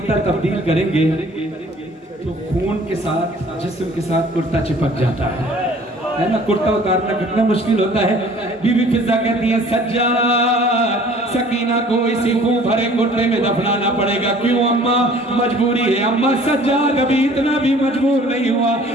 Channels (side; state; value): both; normal; correlation 0.52